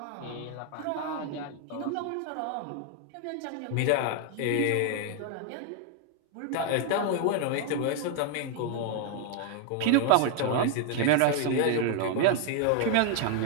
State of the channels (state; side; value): different; both; correlation 0.00